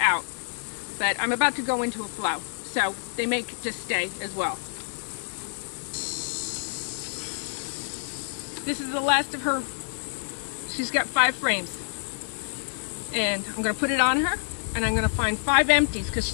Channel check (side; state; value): right; silent; 60 dB below the other